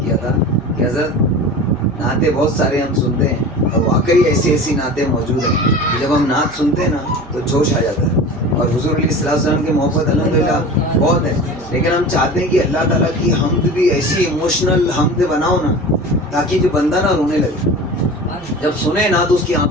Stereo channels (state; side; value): noise; right; hum, 23 dB below the sound